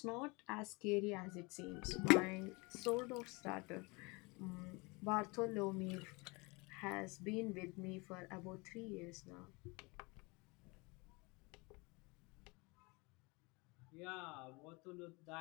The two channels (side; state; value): right; quieter; 27.0 dB